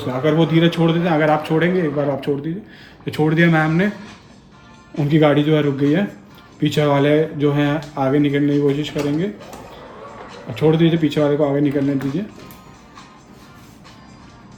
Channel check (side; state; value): both; identical; correlation 1.00